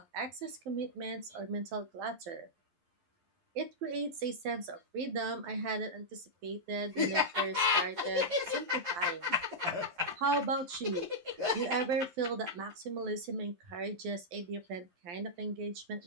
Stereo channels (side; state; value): left; late; 12 ms